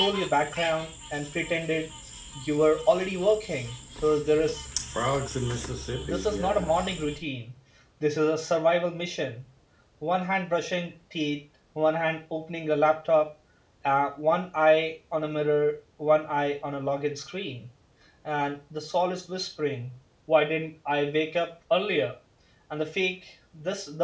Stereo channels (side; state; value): both; identical; correlation 1.00